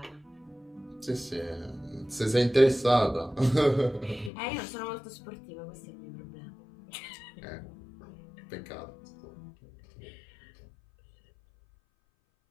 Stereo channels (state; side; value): drops out; right; at 4.3 s